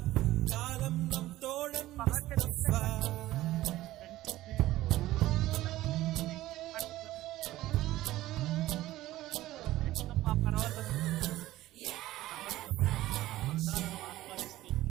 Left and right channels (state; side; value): quieter; left; 15.9 dB